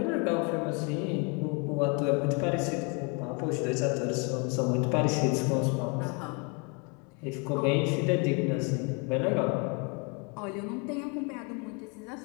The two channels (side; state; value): right; quieter; 33.2 dB